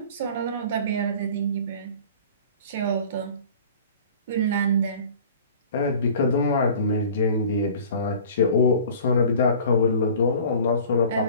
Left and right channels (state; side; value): inverted; both; correlation -0.45